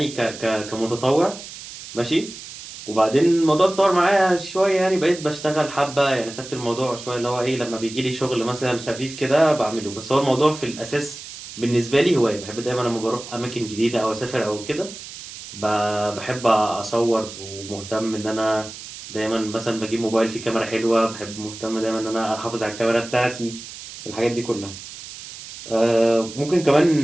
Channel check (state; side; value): noise; right; hiss, 13 dB below the sound